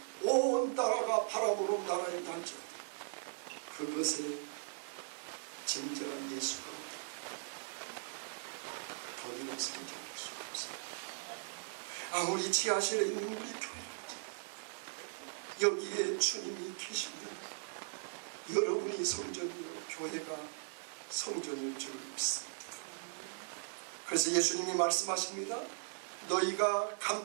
온 나라가 바라보는 나라에 할지라도 그것에 진정한 예수가 없다. 더이는 성장할 수가 없습니다. 아무리 지하실에 있는 우리 교회랄지 여기에 주님이 계시면 여러분이 성전이요 교회가 성전일 줄 믿습니다. 그래서 예수님이 말씀하십니다. 너희가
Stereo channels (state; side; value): silent; left; digital silence